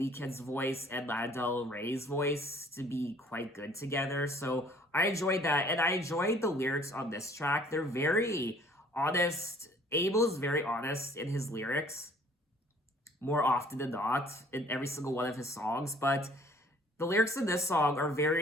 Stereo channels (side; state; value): both; normal; correlation 0.56